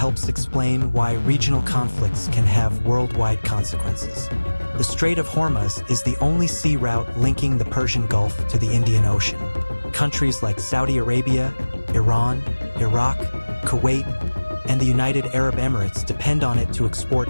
explain why regional conflicts can have worldwide consequences. The Strait of Hormuz is the only sea route linking the Persian Gulf to the Indian Ocean. Countries like Saudi Arabia, Iran, Iraq, Kuwait, and the United Arab Emirates depend on it to export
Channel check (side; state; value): both; inverted; correlation -1.00